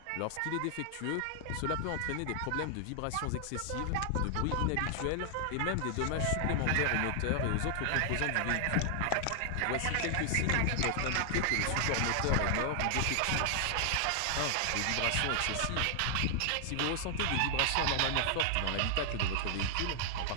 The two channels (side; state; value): both; different; correlation 0.00